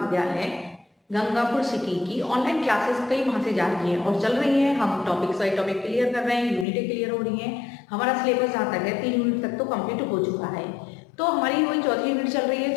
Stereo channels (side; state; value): right; drops out; at 6.7 s